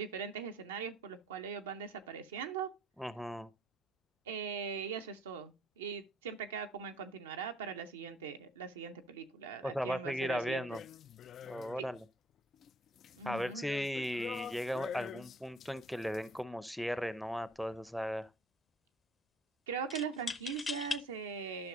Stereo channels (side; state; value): both; normal; correlation 0.59